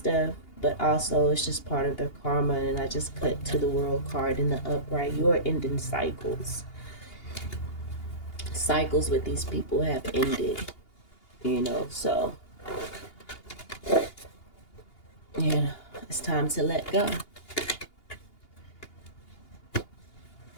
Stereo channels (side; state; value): right; late; 2.8 ms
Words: but also it's just part of their karma. And I just put to the world card in the upright. You are ending cycles. Cycles with these people have ended, so it's time to let go.